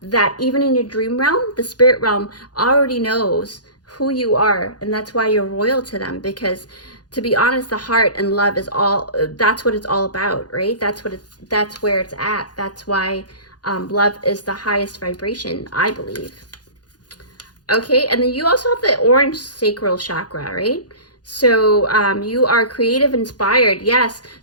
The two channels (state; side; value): late; right; 0.69 ms